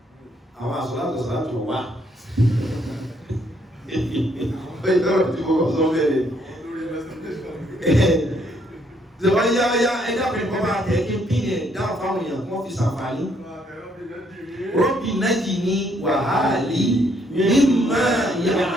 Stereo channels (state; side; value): normal; both; correlation 0.70